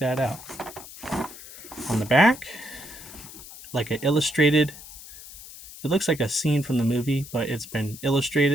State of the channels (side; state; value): left; noise; hiss, 16 dB below the sound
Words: out. On the back, like an illustrated, it looks like a scene from the movie, but it's been